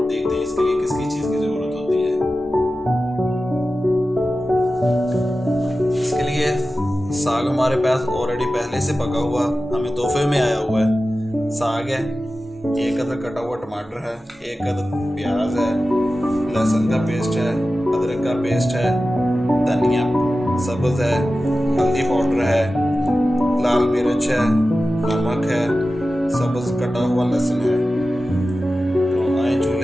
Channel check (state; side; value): normal; both; correlation 0.94